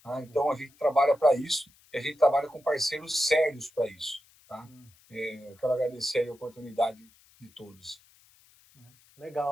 Tá? Então, a gente trabalha para isso e a gente trabalha com parceiros sérios para isso. Tá? Eu quero agradecer a oportunidade de todos.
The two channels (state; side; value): noise; left; hiss, 29 dB below the sound